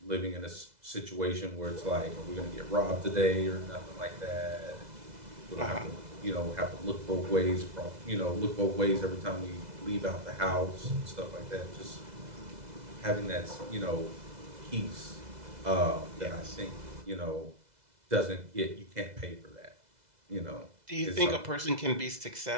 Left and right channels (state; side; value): late; left; 2.0 ms